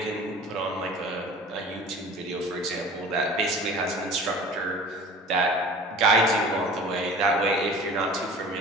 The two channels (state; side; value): normal; both; correlation 0.42